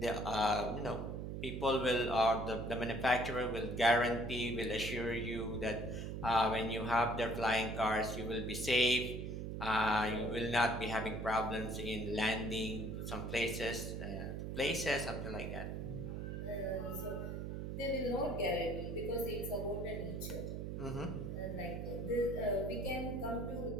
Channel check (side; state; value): right; noise; hum, 5 dB below the sound